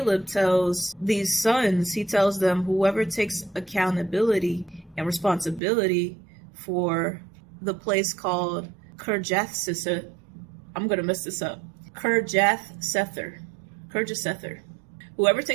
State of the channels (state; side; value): drops out; left; at 5.6 s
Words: tells these sons, he tells them, whoever takes accountability and responsibility for the place called Kirjathsepher, I'm going to mess this up, Kirjathsepher. Whoever